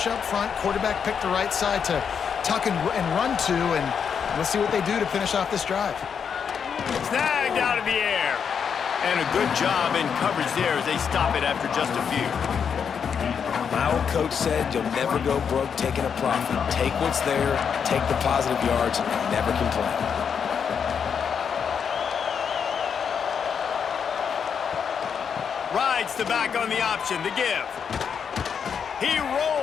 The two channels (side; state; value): right; quieter; 7.0 dB